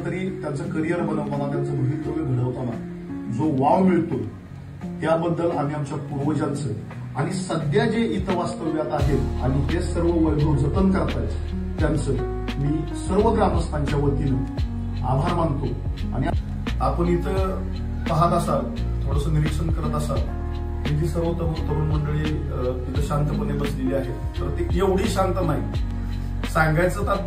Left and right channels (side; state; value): both; identical; correlation 1.00